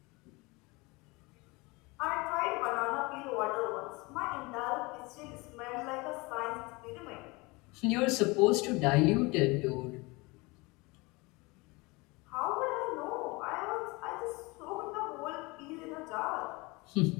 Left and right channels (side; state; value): right; quieter; 25.0 dB